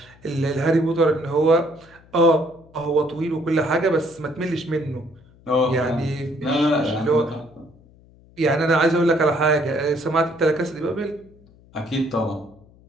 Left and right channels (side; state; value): left; noise; hum, 27 dB below the sound